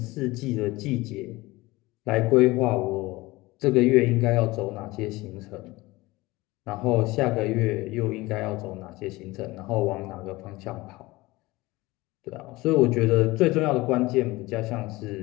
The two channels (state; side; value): quieter; right; 20.7 dB